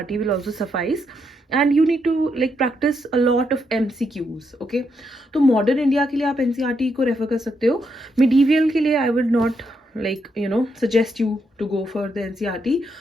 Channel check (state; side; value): normal; both; correlation 0.79